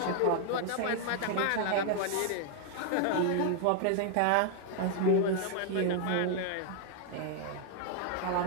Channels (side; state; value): both; different; correlation 0.00